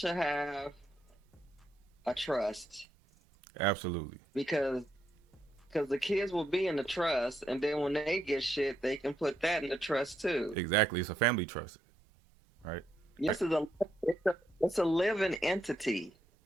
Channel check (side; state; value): both; normal; correlation 0.78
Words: have a trust Absolutely. because the kids will be in the trust, and then when they get shit, they can put that in the trust too. Exactly. It's a family trust, right? Yes, it's a living entity.